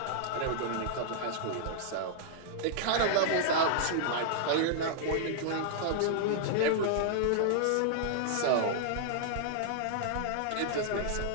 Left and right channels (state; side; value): different; both; correlation -0.01